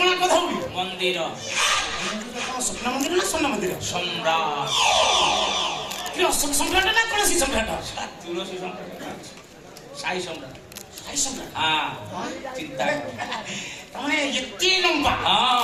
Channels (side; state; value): both; identical; correlation 1.00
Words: କଥା ହଉଲି? ମନ୍ଦିର ସ୍ୱପ୍ନ ମନ୍ଦିର ନା ସ୍ୱର୍ଣ୍ଣ ମନ୍ଦିର? ସମ୍ରାଟ ଅଶୋକ ସମ୍ରାଟ ନା ତୁଳସୀ ସମ୍ରାଟ? ତୁଳସୀ ସମ୍ରାଟ ସାଇ ସମ୍ରାଟ। ସାଇ ସମ୍ରାଟ ଚିନ୍ତା ତମେ ଏତେ ଲମ୍ବା।